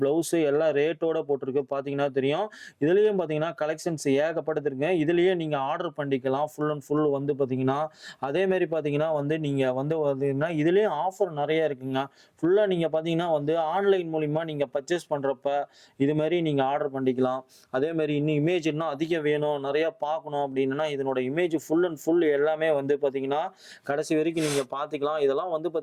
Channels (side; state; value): both; identical; correlation 1.00